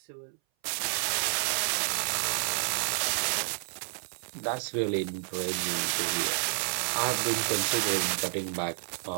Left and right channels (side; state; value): left; silent; 58 dB below the other